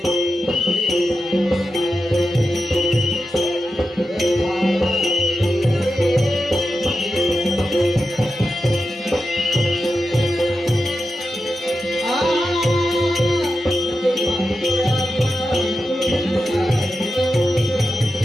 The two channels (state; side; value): normal; both; correlation 0.90